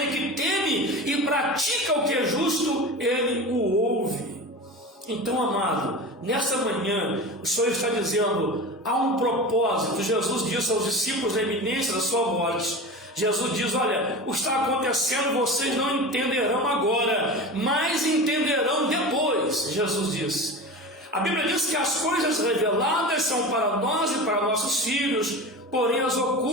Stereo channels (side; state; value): both; normal; correlation 0.30